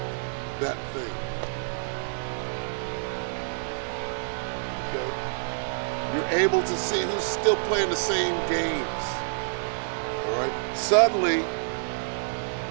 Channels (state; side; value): silent; left; digital silence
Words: that thing. Okay? You're able to see who's still playing the same games. All right? Suddenly,